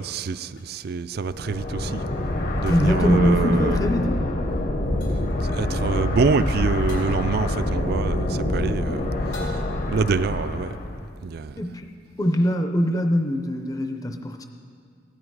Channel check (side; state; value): both; normal; correlation 0.69